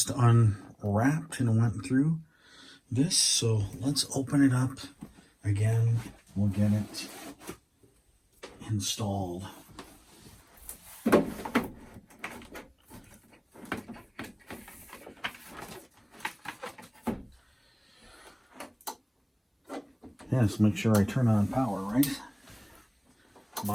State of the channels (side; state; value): both; identical; correlation 1.00